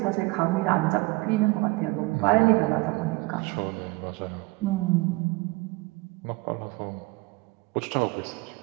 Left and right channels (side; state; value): left; quieter; 23.7 dB